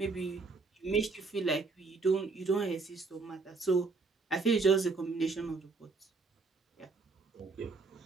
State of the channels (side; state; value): left; quieter; 4.0 dB